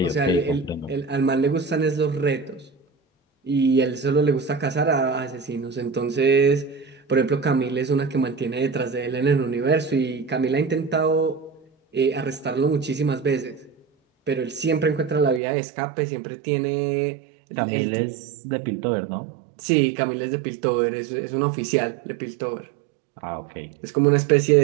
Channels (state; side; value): drops out; left; at 15.4 s